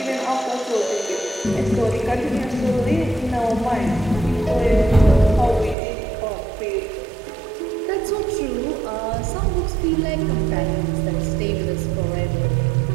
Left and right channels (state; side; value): drops out; left; at 5.8 s